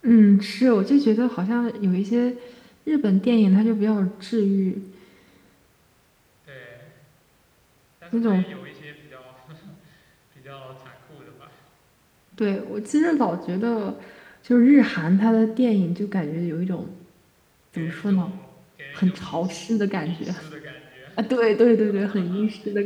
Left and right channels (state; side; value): identical; both; correlation 1.00